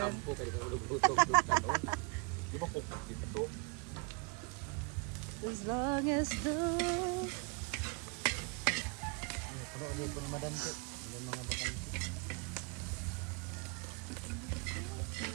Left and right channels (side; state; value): left; quieter; 32.6 dB